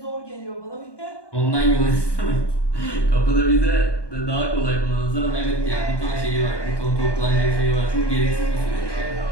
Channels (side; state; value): right; late; 1.2 ms